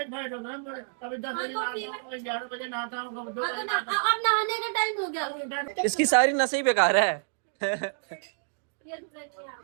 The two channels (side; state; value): left; silent; digital silence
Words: कभी 10 बजे नहाता हूँ, 11 बजे नहाता हूँ, कभी 2 बजे नहाता हूँ। अब नहाने का टाइम हो गया। इसकी सारी नसें ही बेकार है।